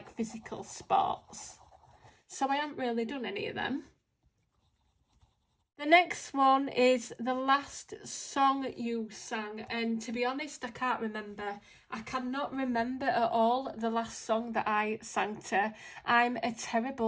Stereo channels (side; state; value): both; identical; correlation 1.00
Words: physical sports. So I haven't really done any of them. The next one is the last song you sang, and to be honest, I can't remember. I cannot remember at all the last song that I sang to. I'm a